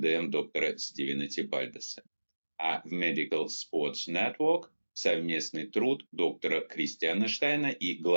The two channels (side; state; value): both; inverted; correlation -1.00